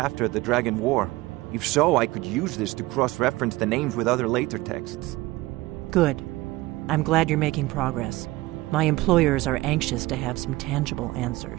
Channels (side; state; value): left; quieter; 19.6 dB